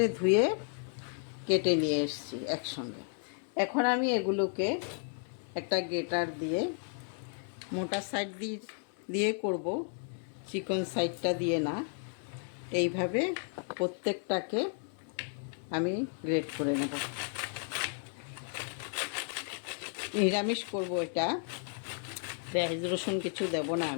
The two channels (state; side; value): silent; right; 55 dB below the other